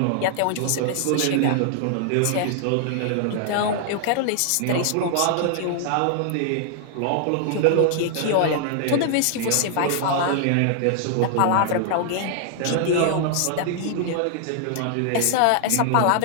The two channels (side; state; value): both; different; correlation 0.00